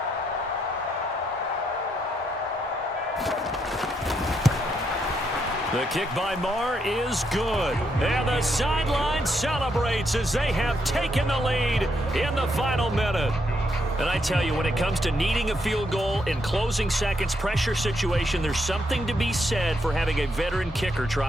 The kick by Maher is good. And the sideline celebrates as they have taken the lead in the final minute. And I tell you, when it comes to needing a field goal in closing seconds, pressure situation, there's something to be said for having a veteran kicker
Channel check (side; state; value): both; normal; correlation 0.77